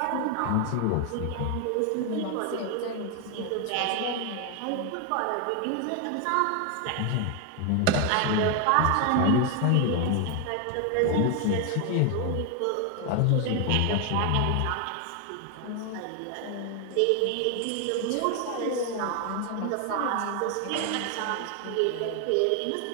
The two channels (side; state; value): both; different; correlation 0.01